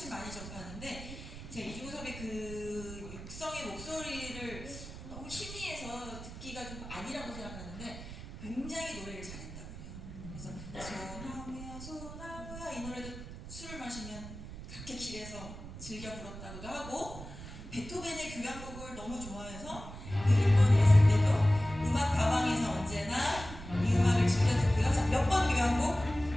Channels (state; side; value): noise; right; rumble, 12 dB below the sound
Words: 많이 접하는데, 제가 이중섭의 그 육성의 목소리를 너무 희미해서 듣기가 좀 아니라고 생각하는데 굉장히 노래를 잘했다고 해요. 그래서 소나무야 소나무야 이 노래도 술을 마시면 그렇게 길에서 즐겨 불렀다고도 하고, 베토벤의 교향곡을 너무 좋아해서 그 일본에 있을 때도 음악 가방에서 언제나 이 음악을 즐겨 듣고요. 자, 몇 번 교향곡?